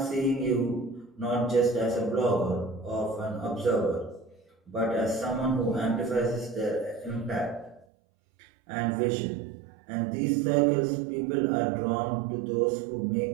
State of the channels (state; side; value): drops out; left; at 7.9 s